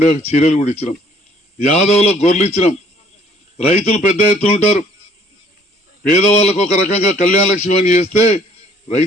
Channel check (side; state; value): both; normal; correlation 0.60